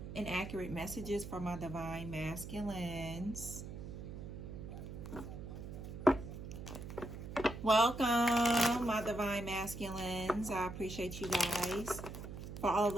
and accurate messages for my divine masculines. Welcome, my divine masculines. I appreciate you guys for all of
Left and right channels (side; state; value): right; noise; hum, 9 dB below the sound